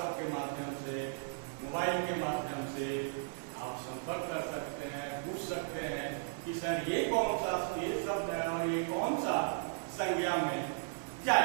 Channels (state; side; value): silent; left; digital silence